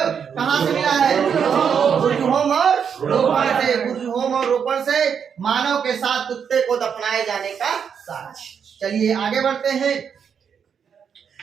कहाँ से मिला है? बुर्जहोम और रोपण से। बुर्जहोम और रोपण से मानव के साथ कुत्ते को दफनाए जाने का साक्ष्य। चलिए आगे बढ़ते हैं।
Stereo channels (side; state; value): left; quieter; 7.2 dB